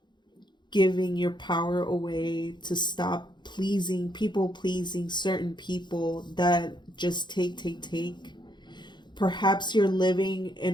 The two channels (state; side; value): late; right; 0.22 ms